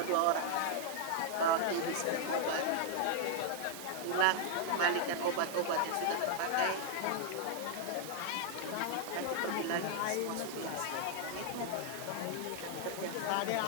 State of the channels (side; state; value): both; different; correlation 0.00